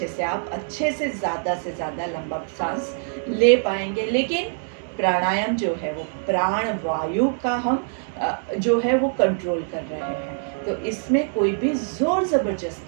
से ज़्यादा लंबा सांस ले पाएंगे। लेकिन प्राणायाम जो है वो प्राण वायु का हम जो है वो कंट्रोल कर रहे हैं। तो इसमें कोई भी जोर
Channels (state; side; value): silent; left; 63 dB below the other